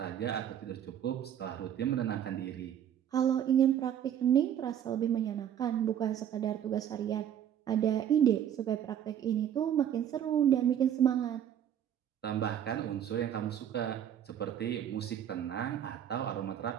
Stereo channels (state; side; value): quieter; left; 9.8 dB